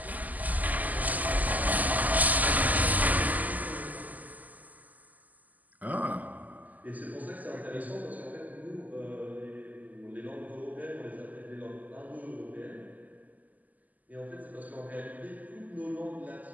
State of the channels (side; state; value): left; late; 0.080 ms